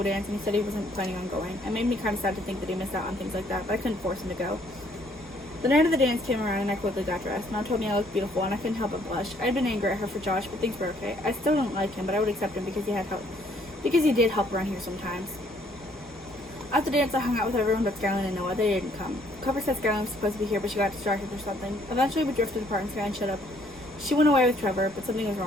dance, and he said he wasn't planning on going. It made me kind of sad to think that he missed out on things like that, but I couldn't force him to go. The night of the dance came around, and I quickly got dressed. Mom told me I looked beautiful, and I couldn't help but blush. I had been angry at her for Josh, but things were okay. I still don't like him, but I would accept him because he did help around here sometimes. At the dance, I hung out with everyone but Skyline and Noah. They didn't come. Cooper said Skyline was supposed to be here, but she got distracted or something. Eventually, we drifted apart, and Skyline showed up. She went away with Trevor, but something was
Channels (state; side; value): normal; both; correlation 0.64